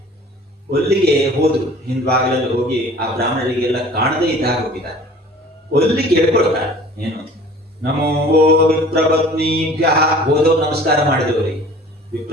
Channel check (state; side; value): normal; both; correlation 0.47